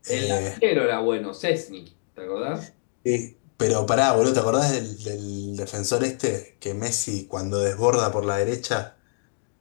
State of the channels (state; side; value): silent; right; digital silence